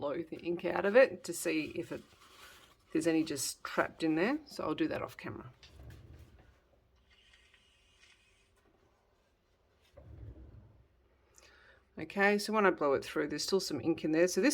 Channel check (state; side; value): identical; both; correlation 1.00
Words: the ink out of it to see if there's any just trapped in there. So I'll do that off camera. Okay, so when I blow it through, there's still some ink in there. So